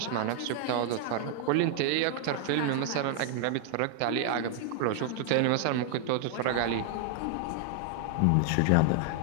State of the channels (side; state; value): both; different; correlation 0.00